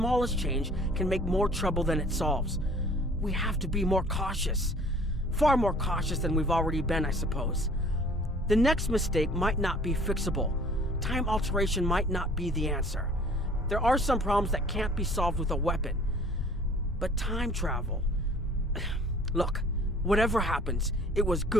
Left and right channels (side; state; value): both; normal; correlation 0.51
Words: change can make more trouble than it solves. We have to be more cautious. Far more cautious than we've already been, I suppose. The next mistake might not be fixable. Time alteration might not be the answer. There are some problems that can't be solved with a weapon. But time travel... Look, whatever happens, it was